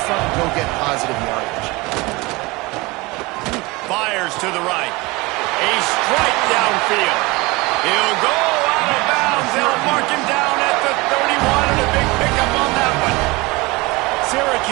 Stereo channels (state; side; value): quieter; left; 23.5 dB